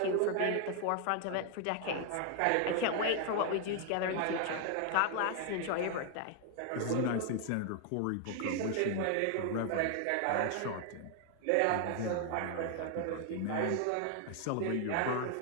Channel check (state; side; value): different; both; correlation 0.00